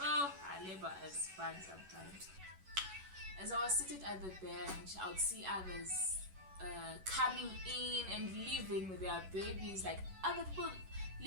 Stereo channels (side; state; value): left; late; 11 ms